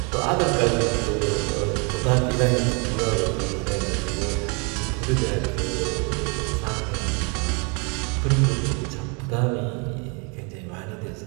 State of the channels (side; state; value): left; quieter; 33.6 dB